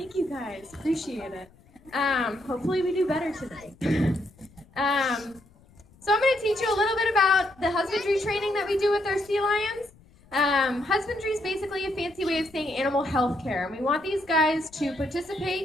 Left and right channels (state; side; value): noise; left; rumble, 27 dB below the sound